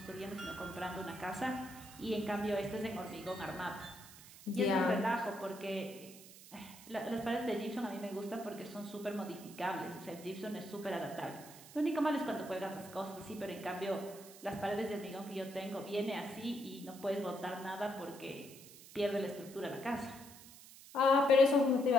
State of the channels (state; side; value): noise; right; hiss, 18 dB below the sound